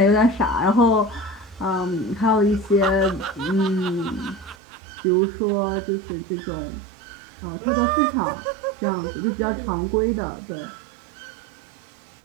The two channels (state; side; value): drops out; left; at 4.5 s